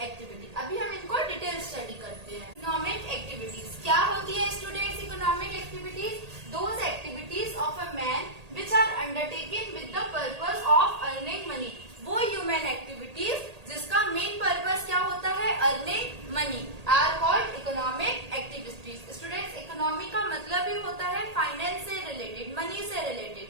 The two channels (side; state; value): left; late; 1.8 ms